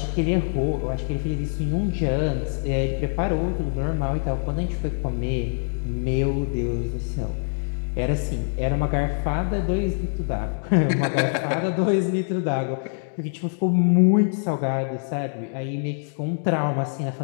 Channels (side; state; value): right; silent; digital silence